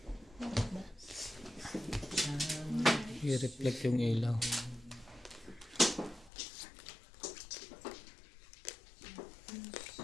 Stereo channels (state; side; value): drops out; right; at 6.3 s